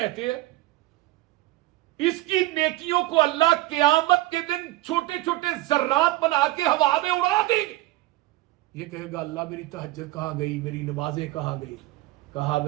ہیں. اس کی نیکیوں کو اللہ قیامت کے دن چھوٹے چھوٹے ذرات بنا کے ہوا میں اڑا دیں گے. یہ کہے گا اللہ میری تہجد کہاں گئی, میری نمازیں کہاں گئی. کہا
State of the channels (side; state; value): left; quieter; 17.7 dB